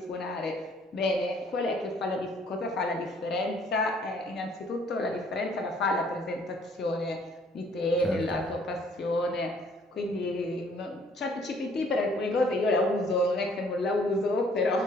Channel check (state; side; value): normal; both; correlation 0.60